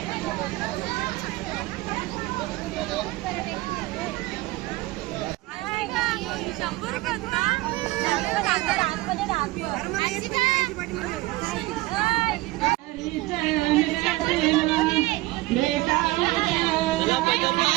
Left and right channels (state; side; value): quieter; left; 19.9 dB